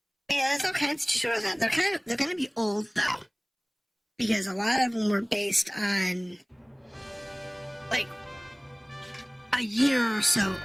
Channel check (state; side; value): identical; both; correlation 1.00